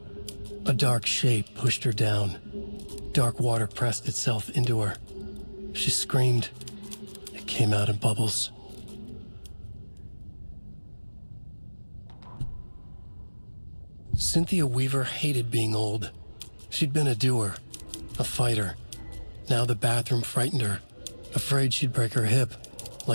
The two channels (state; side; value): inverted; both; correlation -1.00